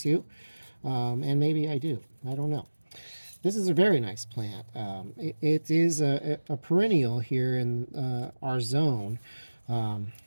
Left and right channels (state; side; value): inverted; both; correlation -1.00